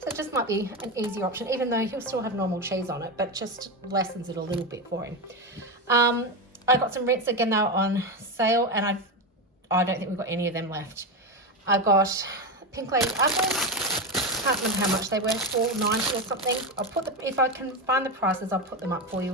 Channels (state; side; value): normal; both; correlation 0.15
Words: it just might be an easier option, even though he'll still have normal cheese on it, but just lessens it a little bit for him. I got some rinse again, they were on sale, and I don't think we've got any of them left. I got Pink Lady apples. Can't remember how much they were, $4.90 or something. If I can find the prices, I'll put them up for